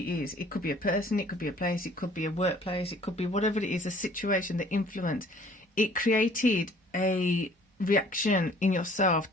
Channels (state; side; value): normal; both; correlation 0.54